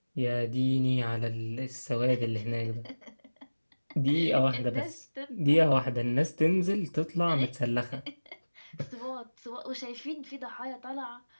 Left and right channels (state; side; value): inverted; both; correlation -1.00